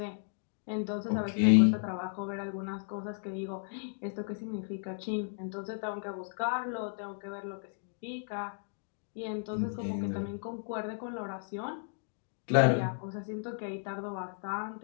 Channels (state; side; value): silent; right; digital silence